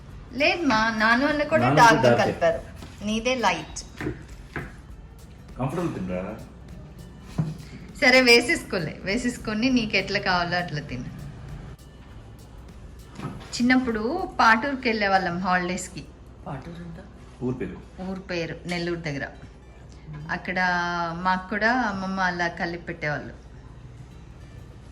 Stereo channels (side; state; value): both; identical; correlation 1.00